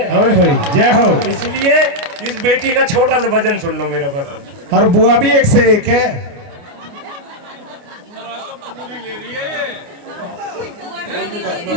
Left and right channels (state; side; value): late; left; 29 ms